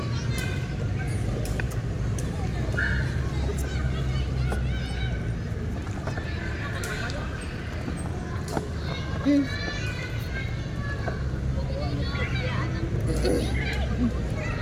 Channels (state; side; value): identical; both; correlation 1.00